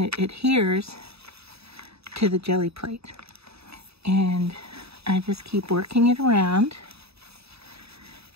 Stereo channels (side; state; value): left; late; 0.78 ms